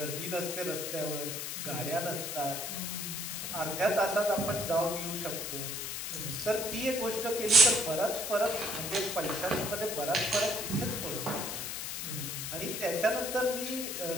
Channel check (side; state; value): left; noise; hiss, 4 dB below the sound